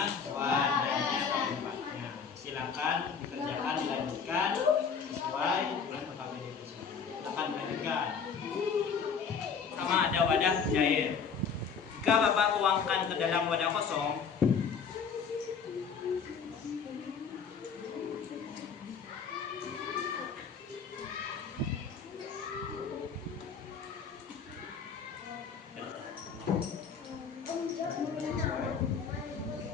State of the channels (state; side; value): quieter; right; 6.2 dB